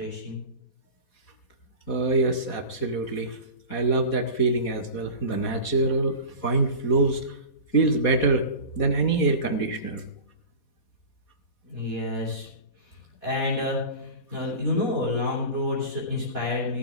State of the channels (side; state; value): right; late; 4.2 ms